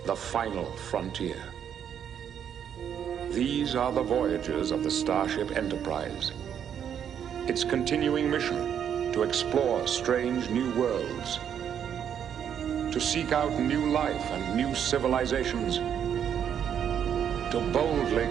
the final frontier. These are the voyages of the Starship Enterprise. Its continuing mission to explore strange new worlds, to seek out new life and new civilizations, to boldly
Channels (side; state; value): left; quieter; 8.8 dB